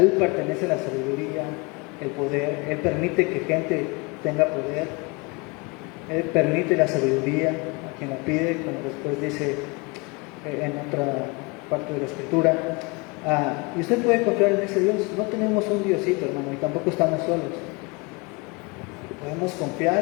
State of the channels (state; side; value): quieter; right; 27.7 dB